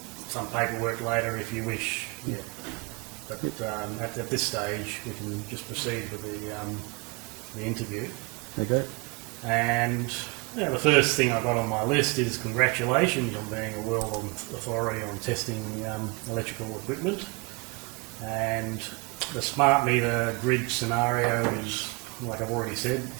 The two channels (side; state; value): left; quieter; 29.8 dB